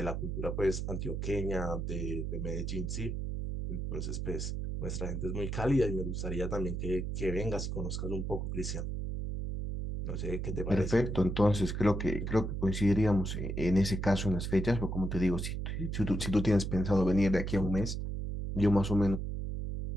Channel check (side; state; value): right; noise; hum, 3 dB below the sound